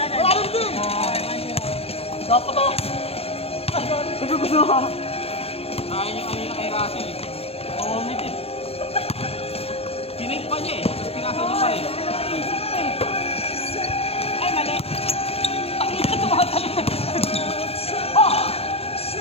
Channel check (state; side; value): late; right; 0.29 ms